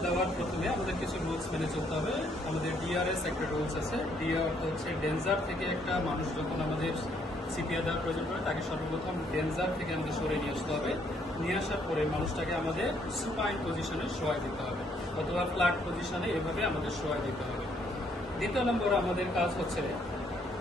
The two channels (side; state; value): both; normal; correlation 0.68